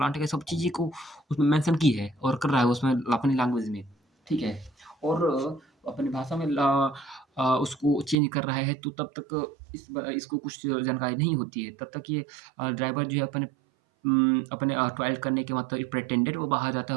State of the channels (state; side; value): drops out; left; at 8.2 s